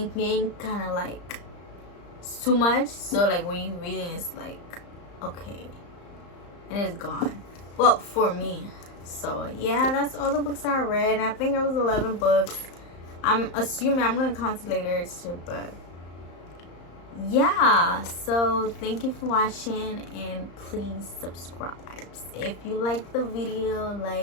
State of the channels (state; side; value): late; right; 35 ms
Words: kind of like it's too much. So like when you reading, it's like, okay, and it's gone. Well, for me. So yeah, that's all the books I read. I think it was 11 books. I'm assuming I'm gonna count it later too, but yeah. So thank you for watching, and please subscribe if you like the video.